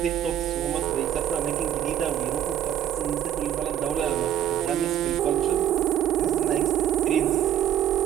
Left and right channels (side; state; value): left; quieter; 10.7 dB